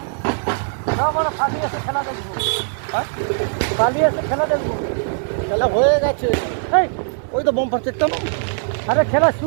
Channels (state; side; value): silent; left; digital silence